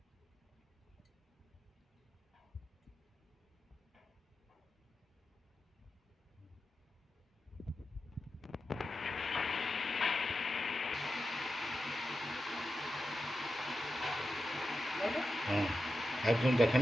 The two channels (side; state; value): both; normal; correlation 0.90